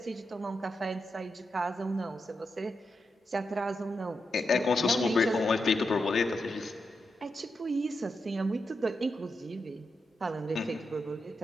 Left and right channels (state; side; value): normal; both; correlation 0.86